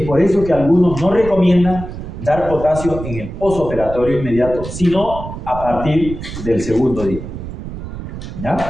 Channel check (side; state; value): right; noise; rumble, 9 dB below the sound